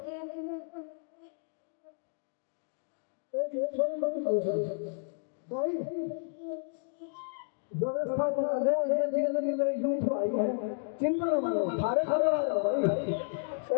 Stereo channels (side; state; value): right; silent; digital silence